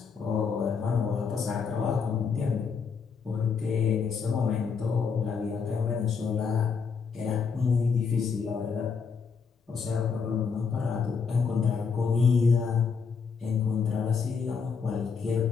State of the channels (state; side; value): quieter; right; 5.7 dB